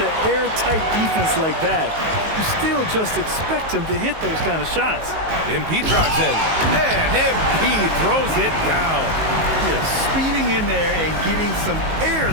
airtight defense like that, you still just expect him to hit those kind of shots. MP drives in. And MP throws it down. Yeah, speeding in there and getting some air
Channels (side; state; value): left; late; 19 ms